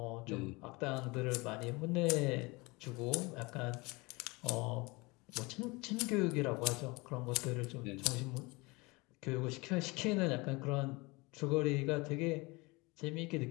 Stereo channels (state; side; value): quieter; right; 25.1 dB